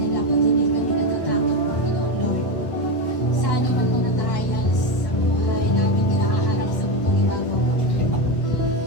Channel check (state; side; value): late; right; 1.1 ms